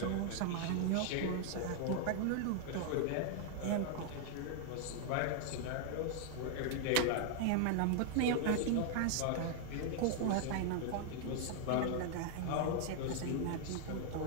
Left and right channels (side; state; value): both; different; correlation 0.00